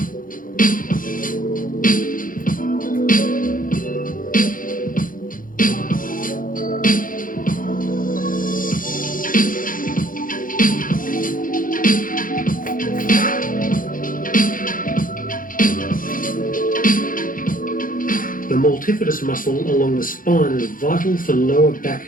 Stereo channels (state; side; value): late; right; 0.40 ms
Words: The multifidus muscle along the spine is vital for lower back